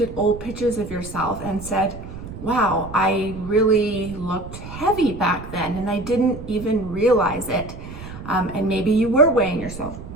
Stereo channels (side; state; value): right; noise; rumble, 12 dB below the sound